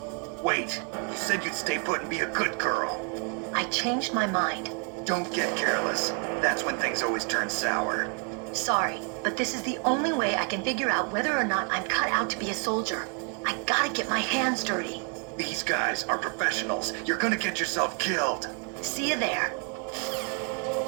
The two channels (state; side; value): quieter; left; 37.4 dB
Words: Wait, you said you'd stay put and be a good girl. I changed my mind. Don't get careless. That's when things always turn sour. Sorry, but this is the only way I can figure out whether or not I'm cut out to be a soldier. I gotta get my hands dirty. These guys are professionals. You're gonna get yourself killed. See you there.